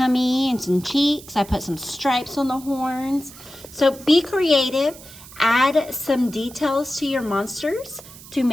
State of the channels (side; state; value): right; noise; hiss, 18 dB below the sound